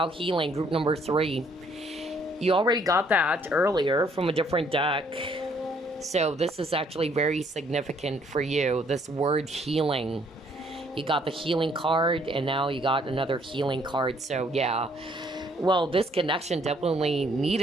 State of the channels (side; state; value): both; normal; correlation 0.65